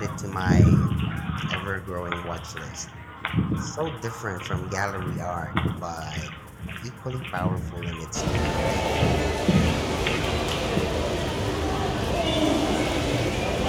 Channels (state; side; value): identical; both; correlation 1.00